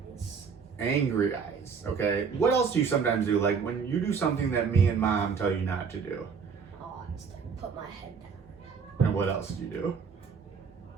eyes. Angry eyes, okay. What else do you sometimes do? Like when you do something that me and mom tell you not to do? Oh, I just like, put my head down. And what else do you do?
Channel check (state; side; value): quieter; left; 6.0 dB